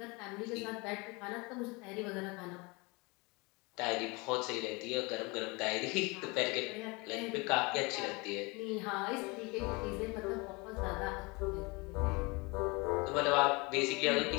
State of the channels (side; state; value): right; quieter; 26.9 dB